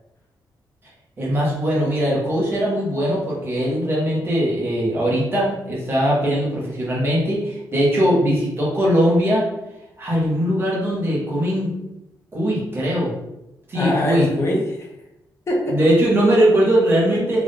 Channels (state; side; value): normal; both; correlation 0.79